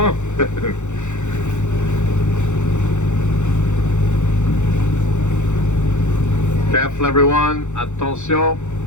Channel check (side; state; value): right; late; 0.84 ms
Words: Careful everyone, attention,